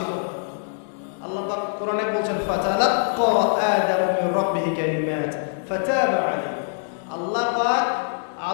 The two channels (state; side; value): silent; right; digital silence